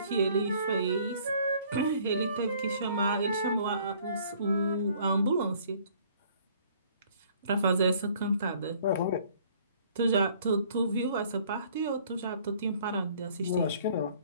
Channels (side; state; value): both; inverted; correlation -0.57